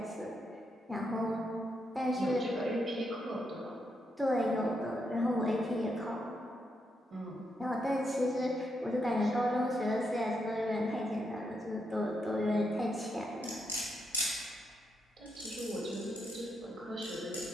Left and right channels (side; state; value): both; normal; correlation 0.81